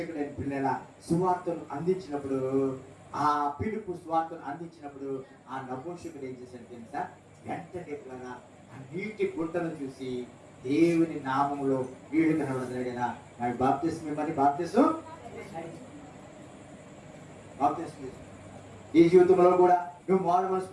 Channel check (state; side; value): identical; both; correlation 1.00